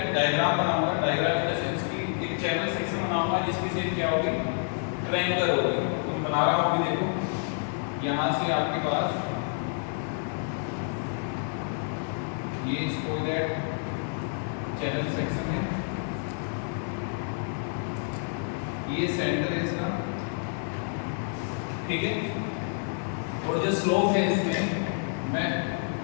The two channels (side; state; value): right; silent; 57 dB below the other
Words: डायग्राम बनाऊंगा। डायग्राम इन द सेंस की एक चैनल सेक्शन बनाऊंगा जिसकी शेप क्या होगी, ट्रायंगुलर होगी। तो मैं बना रहा हूँ, अभी देखो यहाँ से आपके पास ये स्पोइलर चैनल सेक्शन है, ये सेंटर है इसका। ठीक है, और जो स्लोप है इसमें मैं